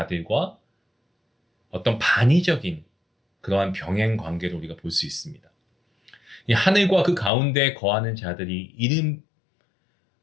어떤 반의적인 그러한 병행 관계를 우리가 볼 수 있습니다. 이 하늘과 그 가운데 거하는 자들이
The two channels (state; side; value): drops out; right; at 7.3 s